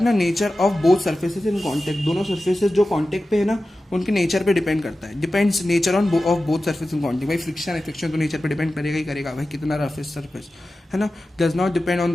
nature of both surfaces in contact, दोनों सर्फेसेस जो कांटेक्ट पे है ना उनके नेचर पे डिपेंड करता है, depends nature on off both surface in contact. भाई फ्रिक्शन है, फ्रिक्शन तो नेचर पे डिपेंड करेगा ही करेगा, भाई कितना रफ है सरफेस, है ना। Does not depend on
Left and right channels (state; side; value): normal; both; correlation 0.94